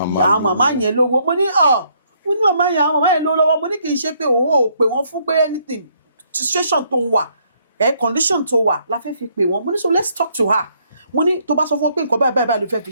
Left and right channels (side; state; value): both; inverted; correlation -0.69